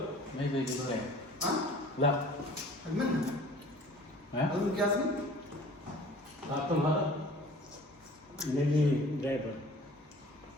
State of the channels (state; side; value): normal; both; correlation 0.48